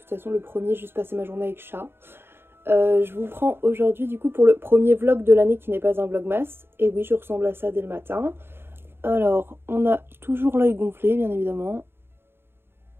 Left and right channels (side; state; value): left; late; 0.11 ms